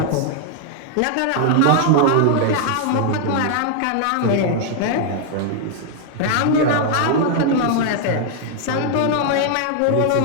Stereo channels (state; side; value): different; both; correlation 0.00